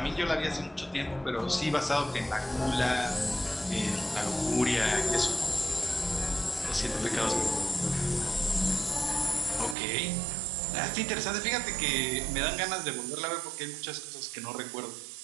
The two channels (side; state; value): left; drops out; at 9.8 s